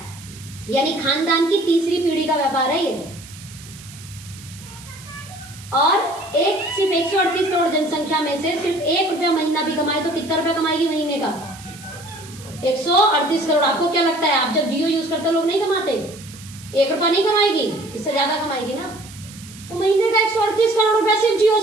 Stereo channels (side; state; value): right; noise; hiss, 18 dB below the sound